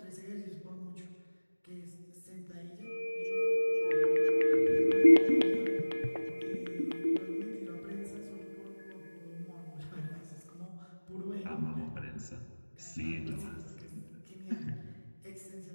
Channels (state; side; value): inverted; both; correlation -1.00